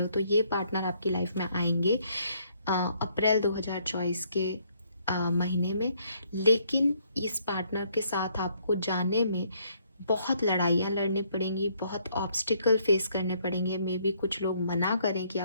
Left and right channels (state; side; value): inverted; both; correlation -0.68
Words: हो, तो ये पार्टनर आपकी लाइफ में आएंगे अप्रैल 2024 के महीने में। लेकिन इस पार्टनर के साथ आपको जाने में बहुत लड़ाइयाँ लड़नी पड़ेंगी, बहुत ऑब्स्टिकल फेस करने पड़ेंगे। मे बी कुछ लोग मना करें कि